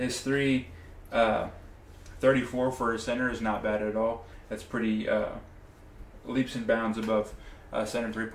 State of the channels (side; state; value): both; identical; correlation 1.00